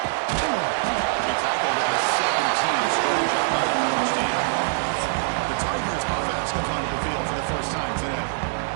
He tackled at the 17. Strong job by the coverage team. The Tigers offense comes onto the field for the first time today.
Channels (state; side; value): silent; left; digital silence